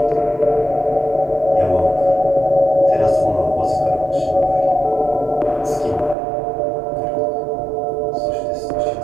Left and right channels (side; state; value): left; drops out; at 6.2 s